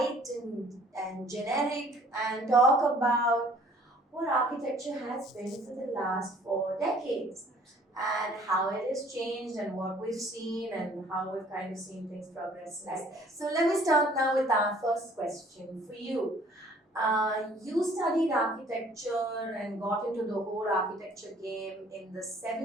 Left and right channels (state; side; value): normal; both; correlation 0.56